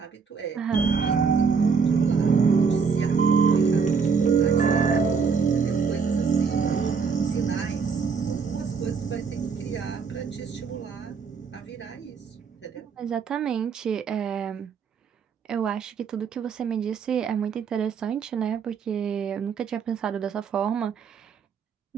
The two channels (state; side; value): quieter; left; 5.8 dB